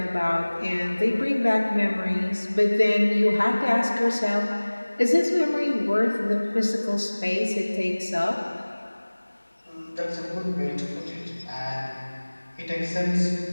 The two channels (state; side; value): inverted; both; correlation -1.00